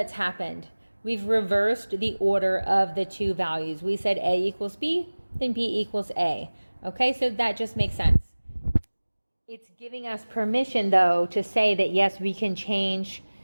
happened. We've reversed the order of the two values. We said A equals B, then B equals A. Okay, so that just makes sense. It's giving us permission, though, to say that yes, we can change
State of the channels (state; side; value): inverted; both; correlation -1.00